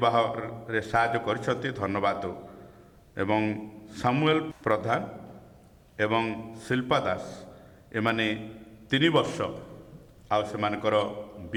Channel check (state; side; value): identical; both; correlation 1.00